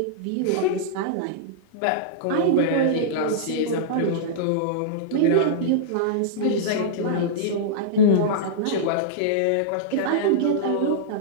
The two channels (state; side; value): different; both; correlation -0.03